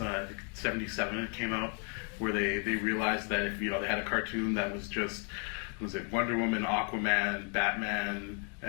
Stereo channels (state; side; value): quieter; right; 39.5 dB